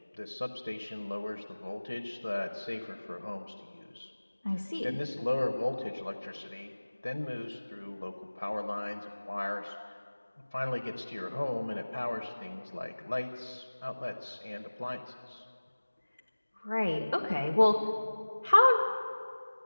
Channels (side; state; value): both; inverted; correlation -1.00